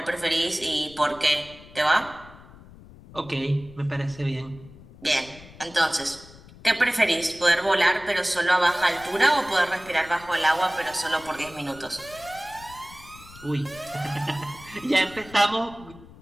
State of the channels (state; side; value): noise; left; rumble, 20 dB below the sound